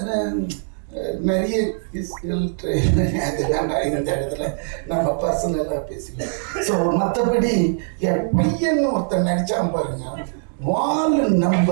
நிறைய அது வேண்டாம் இந்த இடத்துல நம்ம பர்சனலாக பேசிக்கலாம். ஸோ மற்றபடி என் பையன் ஒருத்தன் நடிச்சான் பாருங்க. வால்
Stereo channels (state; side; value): silent; left; digital silence